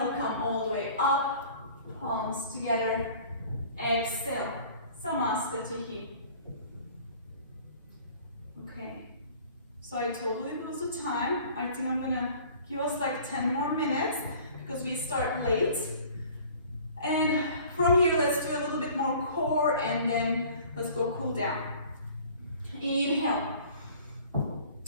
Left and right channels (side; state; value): both; inverted; correlation -0.49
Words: come all the way up, palms together, exhale, Samasthiti. Okay, so I totally lose the time. I think I'm gonna give us like 10 more minutes because we start late. And from here, let's do a little bit more core and then let's go cool down. Inhale,